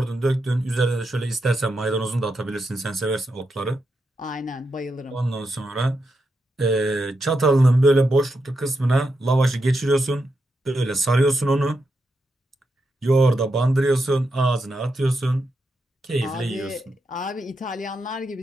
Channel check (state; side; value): normal; both; correlation 0.85